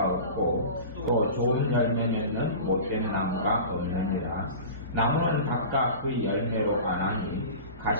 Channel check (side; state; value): both; inverted; correlation -0.35